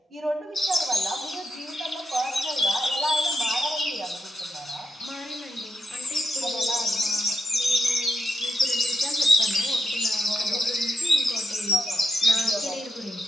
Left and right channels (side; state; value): both; normal; correlation 0.85